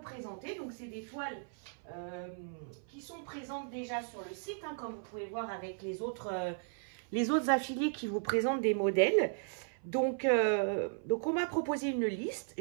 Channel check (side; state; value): left; silent; 54 dB below the other